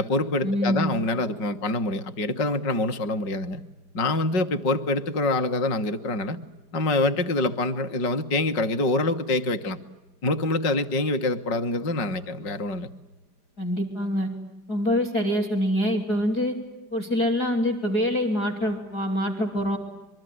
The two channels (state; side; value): late; right; 5.0 ms